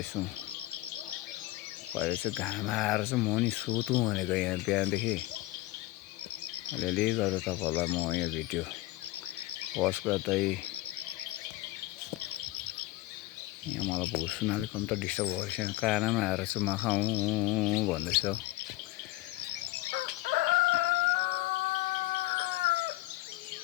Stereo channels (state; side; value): quieter; right; 18.8 dB